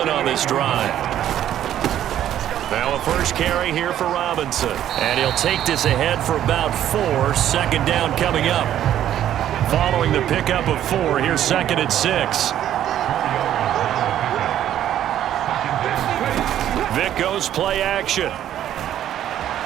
on this drive. Now a first carry here for Robinson. And he'll take this ahead for about 4. 2nd down coming up. Following the pickup of 4, here's 2nd and 6. Vick goes play action.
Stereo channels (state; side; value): quieter; left; 11.4 dB